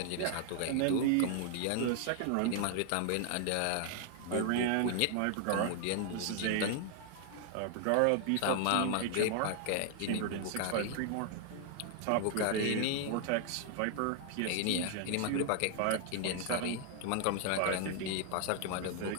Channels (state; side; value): different; both; correlation 0.00